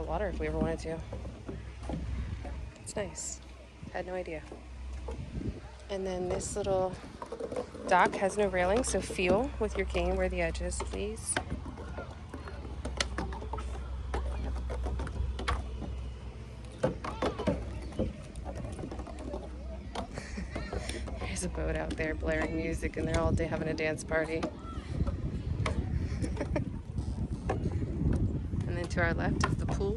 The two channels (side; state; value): both; identical; correlation 1.00